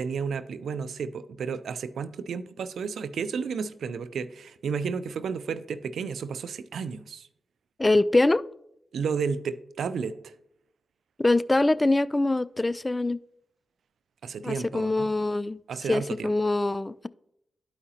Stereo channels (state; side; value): normal; both; correlation 0.92